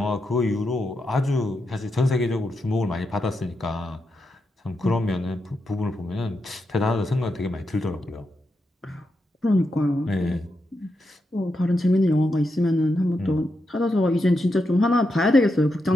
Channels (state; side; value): normal; both; correlation 0.85